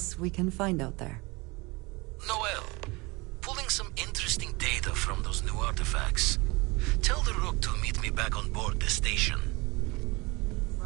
we can find out there. Noel, pulling some interesting data from those new artifacts. Tell the Rook to meet me back on board the station.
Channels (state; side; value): quieter; left; 25.1 dB